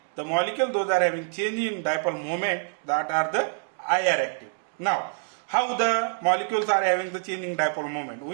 The molecule, those are having change in dipole moment, that are the IR active. Now, how the molecules are having the change in dipole moment?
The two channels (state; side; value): silent; left; digital silence